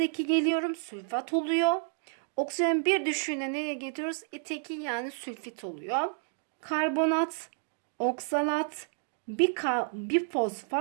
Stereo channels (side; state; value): left; silent; digital silence